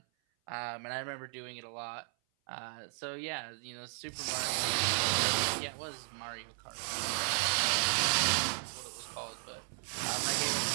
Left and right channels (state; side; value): silent; left; 54 dB below the other